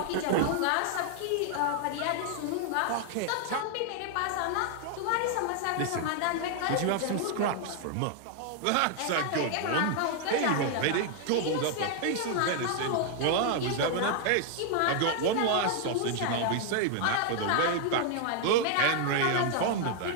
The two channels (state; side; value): different; both; correlation 0.00